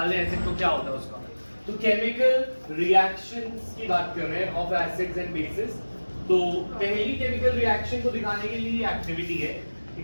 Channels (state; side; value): inverted; both; correlation -1.00